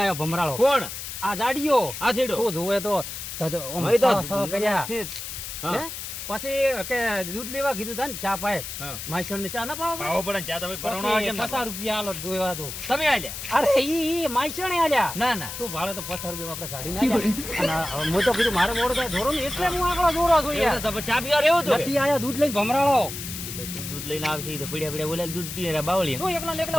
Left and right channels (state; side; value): noise; left; hiss, 8 dB below the sound